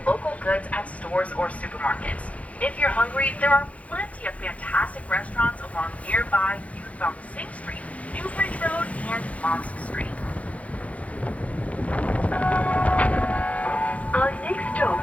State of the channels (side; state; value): right; late; 0.066 ms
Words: local goods at stores or supermarkets. If you're hungry, there are plenty of fantastic restaurants along nearby Youthbound Sing Street, Newbridge Road, and Mosque Street. Our next